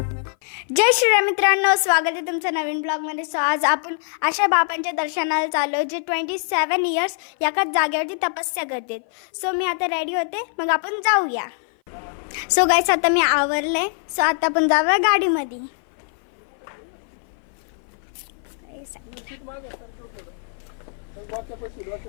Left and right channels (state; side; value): silent; right; 57 dB below the other